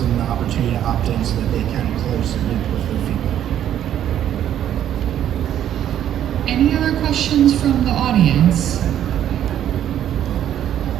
them the opportunity to opt in so that they can close the loop with their feedback. Any other questions from the audience?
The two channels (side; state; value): left; quieter; 10.7 dB